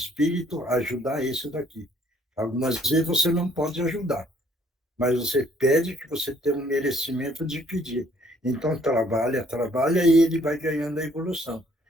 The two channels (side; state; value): both; normal; correlation 0.63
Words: ajudar esse daqui. Algumas vezes você não pode ajudar, mas você pede que você tenha um merecimento de pedir. Então, trabalha, trabalha e ele vai ganhando a evolução.